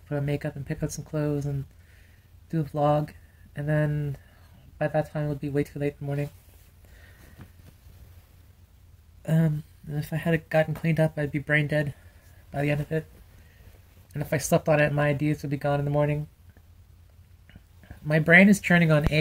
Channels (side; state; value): both; identical; correlation 1.00